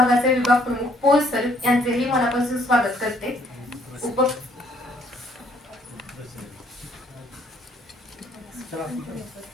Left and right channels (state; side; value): normal; both; correlation 0.64